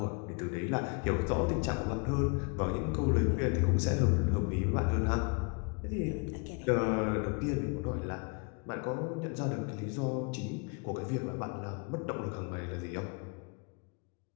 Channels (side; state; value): right; quieter; 33.9 dB